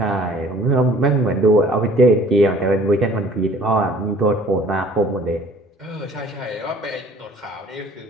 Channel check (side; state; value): both; normal; correlation 0.53